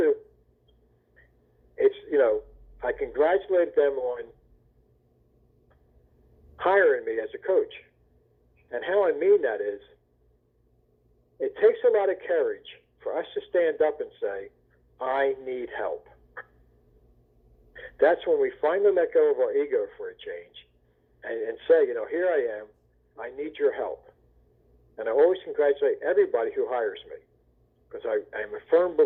it's, you know, I congratulated them on hiring me as a coach. And how I mean that is, it takes a lot of courage for us to stand up and say, I need help. That's when we finally let go of our ego for a change and say, you know, here I am, I need your help. And I always congratulate everybody who hires me, because I am a firm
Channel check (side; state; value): both; identical; correlation 1.00